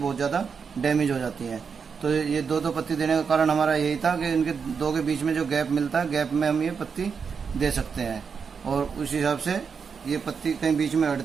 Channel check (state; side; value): quieter; left; 6.0 dB